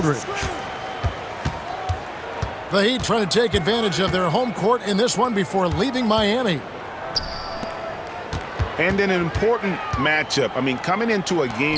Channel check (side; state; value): both; identical; correlation 1.00